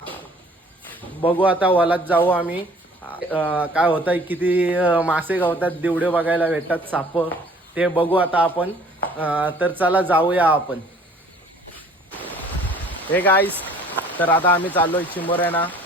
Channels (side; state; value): both; normal; correlation 0.53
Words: बघू आता वलात जाऊ आम्ही. काय होतं, किती मासे गावतात, दिवडे बघायला भेटतात, साप, ते बघू आता आपण. तर चला जाऊया आपण. हे गाईज, तर आता आम्ही चाललोय चिंबोऱ्यांना